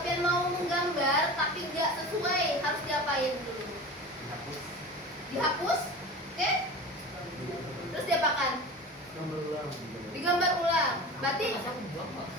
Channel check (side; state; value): both; normal; correlation 0.33